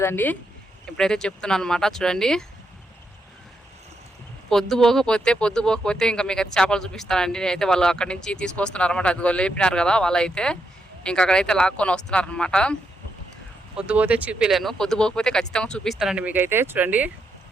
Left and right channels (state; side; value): normal; both; correlation 0.81